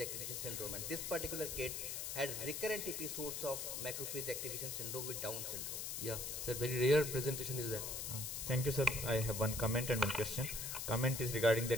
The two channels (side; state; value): left; noise; hiss, 4 dB below the sound